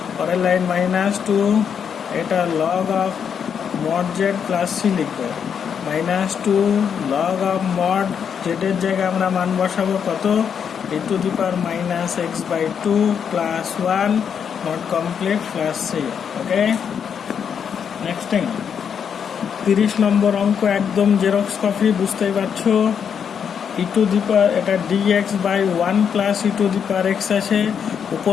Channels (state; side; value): quieter; right; 7.4 dB